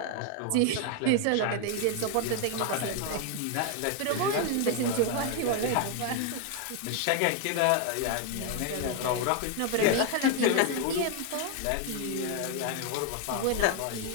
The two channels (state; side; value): different; both; correlation 0.01